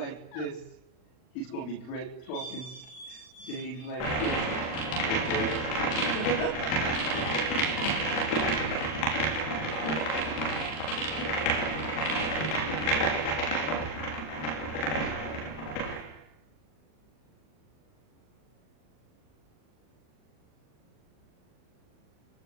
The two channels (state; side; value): late; right; 39 ms